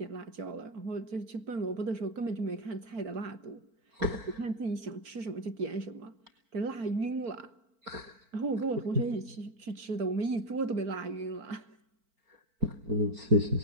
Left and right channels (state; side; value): late; left; 4.5 ms